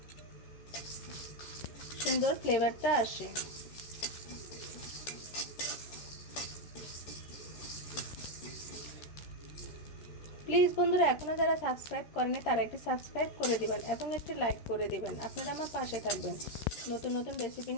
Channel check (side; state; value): right; late; 13 ms